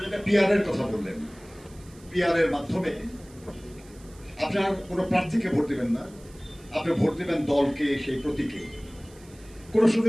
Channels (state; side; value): noise; right; hiss, 25 dB below the sound